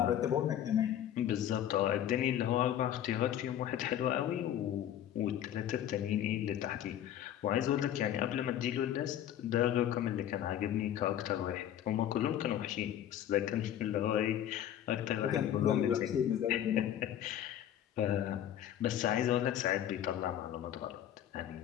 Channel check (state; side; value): quieter; right; 10.9 dB